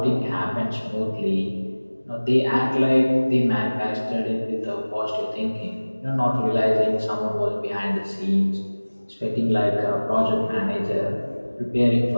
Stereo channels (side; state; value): both; inverted; correlation -1.00